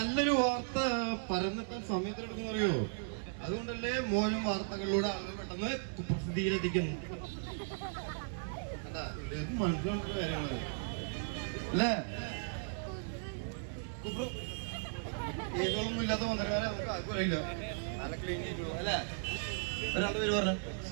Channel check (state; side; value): silent; left; digital silence